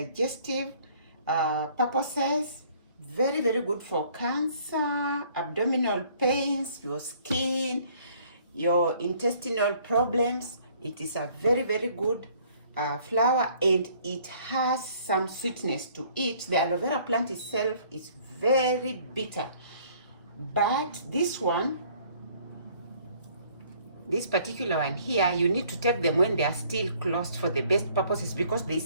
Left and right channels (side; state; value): both; inverted; correlation -0.59